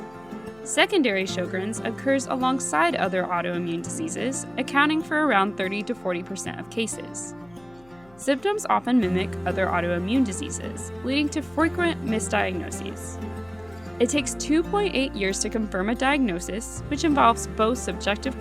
Secondary Sjogren's occurs alongside other autoimmune diseases, accounting for around 30 to 40% of cases. Symptoms often mimic other autoimmune diseases, leading to frequent misdiagnoses. It takes 2.8 years to confirm a diagnosis, which involves both subjective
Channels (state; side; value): noise; left; hum, 27 dB below the sound